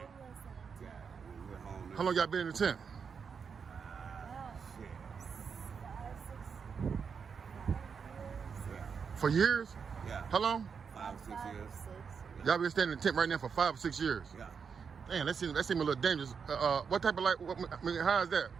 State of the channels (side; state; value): left; quieter; 6.2 dB